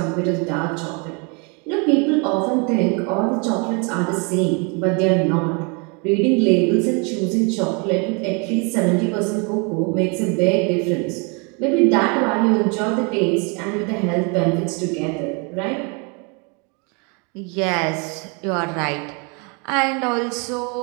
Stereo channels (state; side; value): quieter; left; 33.2 dB